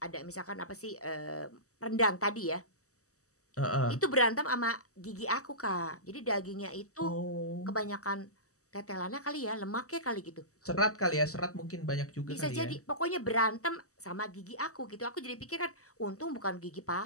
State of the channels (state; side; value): late; right; 0.65 ms